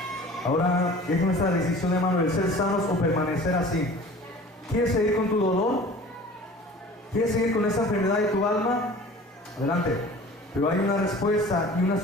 Ahora es nuestra decisión, hermano, el ser sanos o permanecer así. ¿Quieres seguir con tu dolor? ¿Quieres seguir con esa enfermedad de tu alma? Adelante. Pero hay una respuesta y una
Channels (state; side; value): normal; both; correlation 0.44